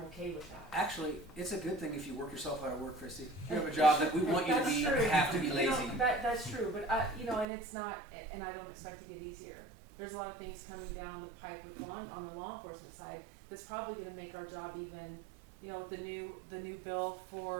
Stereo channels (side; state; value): left; drops out; at 7.5 s